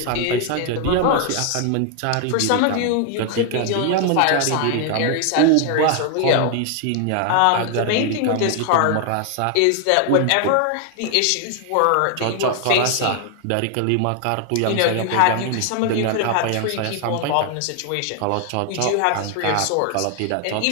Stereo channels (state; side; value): different; both; correlation 0.00